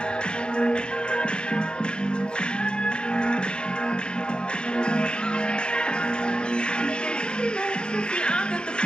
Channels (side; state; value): right; late; 0.051 ms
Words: I got the